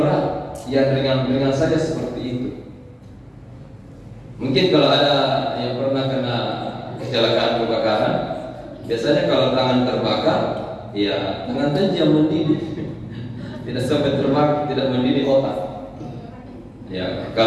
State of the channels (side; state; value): both; identical; correlation 1.00